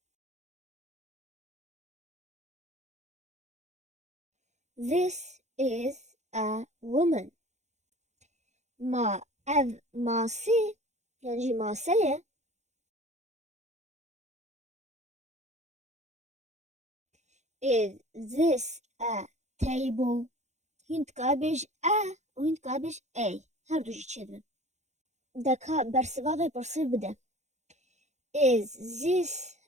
This is a woman. Ev masê yan jî mase ye. Is this a table? Hûn dikare bêj a û hûn dikare bêj a. Her du jî çêdibin. Deka bersivavê pirsê bide. Is this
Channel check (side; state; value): left; late; 0.33 ms